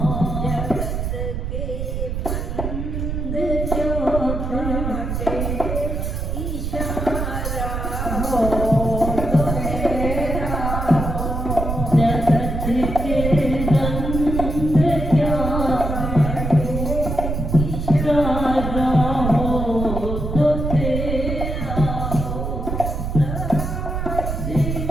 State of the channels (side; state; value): right; noise; rumble, 3 dB below the sound